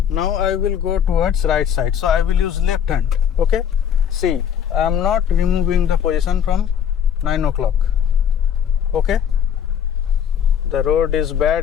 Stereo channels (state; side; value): quieter; right; 8.7 dB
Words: Now I will go towards right side. So I will use left hand. Okay. See, I am not removing the position from 9 o'clock. Okay. The road is